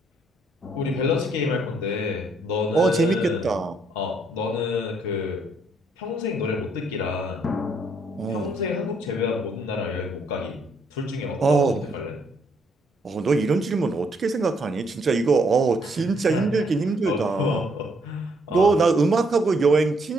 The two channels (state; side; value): normal; both; correlation 0.71